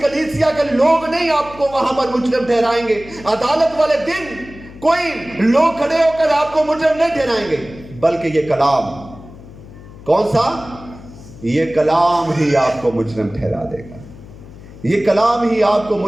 کلیسیا کے لوگ نہیں آپ کو وہاں پر مجرم ٹھہرائیں گے۔ عدالت والے دن کوئی لوگ کھڑے ہو کر آپ کو مجرم نہیں ٹھہرائیں گے، بلکہ یہ کلام، کون سا؟ یہ کلام ہی آپ کو مجرم ٹھہرا دے گا، یہ کلام ہی آپ کو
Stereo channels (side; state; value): left; noise; hum, 18 dB below the sound